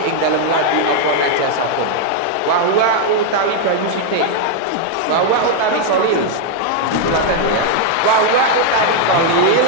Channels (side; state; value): both; different; correlation 0.00